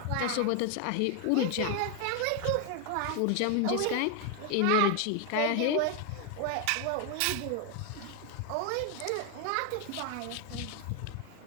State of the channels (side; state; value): both; different; correlation 0.01